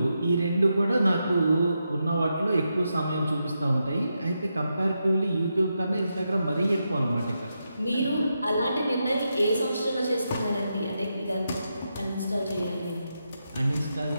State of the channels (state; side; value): inverted; both; correlation -0.85